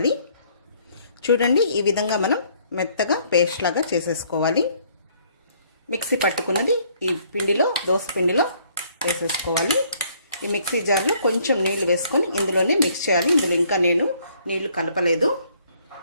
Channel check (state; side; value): inverted; both; correlation -0.64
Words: చూడండి, ఈ విధంగా మనం మెత్తగా పేస్ట్ లాగా చేసేసుకోవాలి. మిక్సీ పట్టుకున్నది ఈ పిండిలో, దోస పిండిలో వేసేసుకోవాలి. ఈ మిక్సీ జార్లో కొంచెం నీళ్లు వేసుకొని ఇందులోనే మిక్స్ చేయాలి. ఇందులో ఇంకా నేను నీళ్లు కలపలేదు.